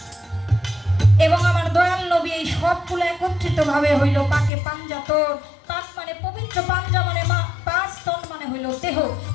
এবং আমার দয়াল নবী, এই সবগুলো একত্রিত ভাবে হইল পাকে পাঞ্জাতন। পাক মানে পবিত্র, পাঞ্জা মানে পাঁচ, তন মানে হইল দেহ।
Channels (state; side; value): drops out; right; at 4.5 s